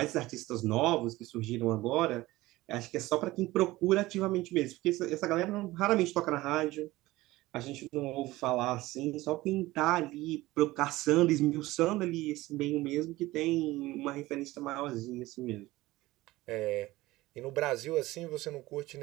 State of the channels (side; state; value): left; quieter; 18.5 dB